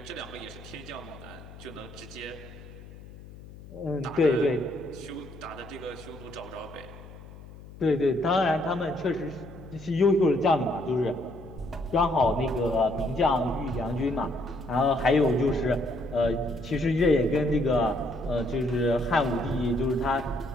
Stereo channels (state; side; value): noise; left; hum, 17 dB below the sound